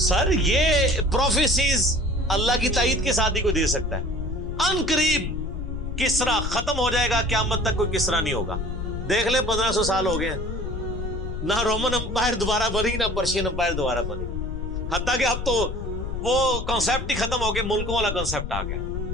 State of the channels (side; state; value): left; noise; rumble, 5 dB below the sound